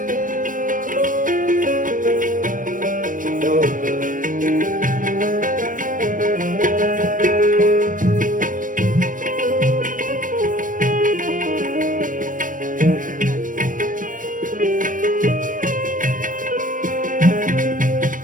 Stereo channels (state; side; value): late; left; 0.39 ms